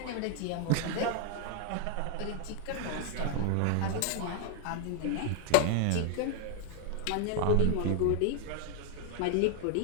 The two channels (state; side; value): different; both; correlation 0.00